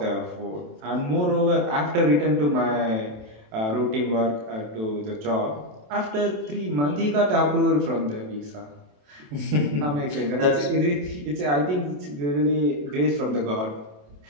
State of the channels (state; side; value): late; left; 27 ms